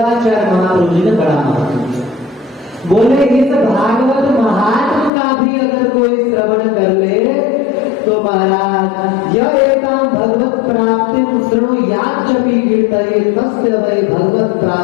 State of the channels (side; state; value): right; drops out; at 5.1 s